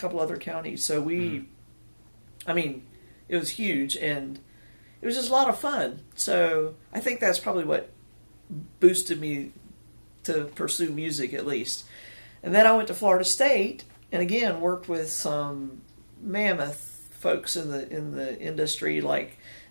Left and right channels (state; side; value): inverted; both; correlation -1.00